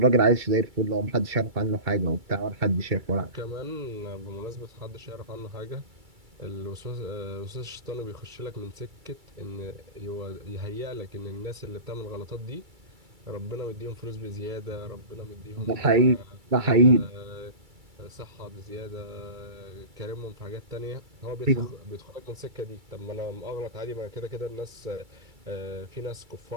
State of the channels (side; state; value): left; late; 2.3 ms